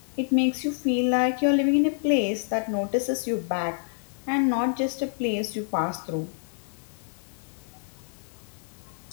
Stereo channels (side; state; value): right; silent; 60 dB below the other